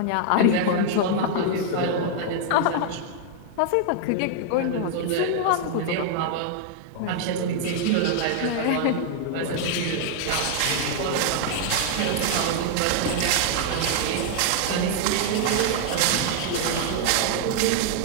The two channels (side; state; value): both; different; correlation -0.01